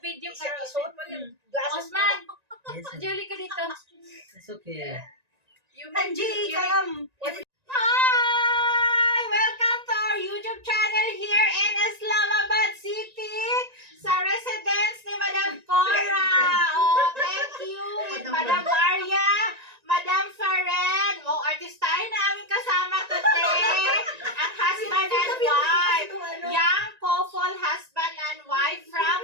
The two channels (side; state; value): left; late; 1.9 ms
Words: video ka. Osman, Julie ka dito. It's okay. Angie, come. Hi! Welcome to our YouTube channel here in Islamabad City sa residence ni Madam Cora. Oh, thank you with Madam Maria, Madam Faren. Oh, artistahin na aming kasama today. Ang husband and wife. Young couple, husband and wife from